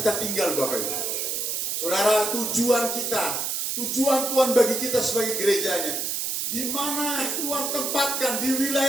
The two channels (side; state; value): right; noise; hiss, 1 dB below the sound